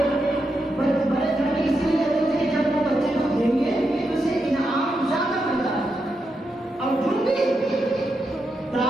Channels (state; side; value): normal; both; correlation 0.85